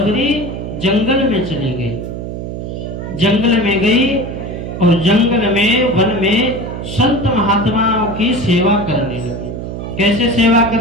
जंगल में चली गई, जंगल में गई और जंगल में, वन में संत महात्माओं की सेवा करने लगी। कैसे सेवा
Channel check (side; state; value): right; noise; hum, 7 dB below the sound